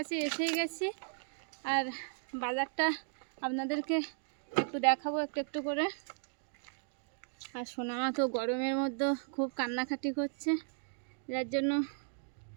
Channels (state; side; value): silent; left; digital silence